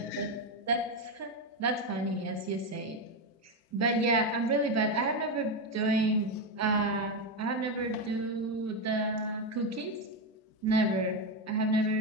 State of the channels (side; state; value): both; normal; correlation 0.10